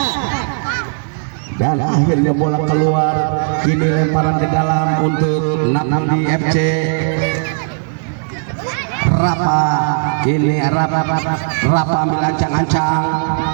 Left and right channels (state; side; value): silent; left; digital silence